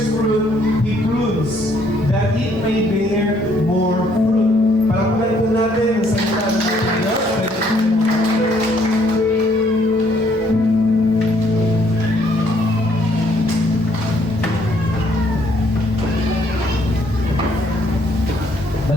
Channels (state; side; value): normal; both; correlation 0.66